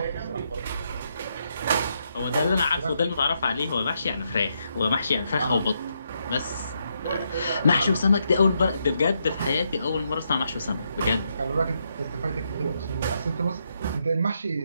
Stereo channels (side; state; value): both; inverted; correlation -0.79